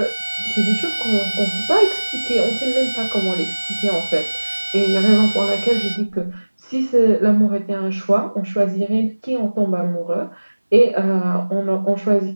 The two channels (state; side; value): inverted; both; correlation -1.00